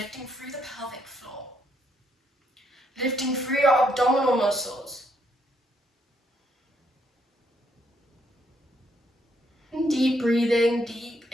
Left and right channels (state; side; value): normal; both; correlation 0.74